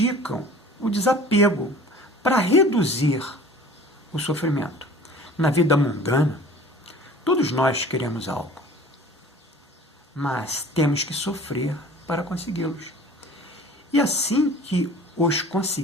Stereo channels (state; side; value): normal; both; correlation 0.45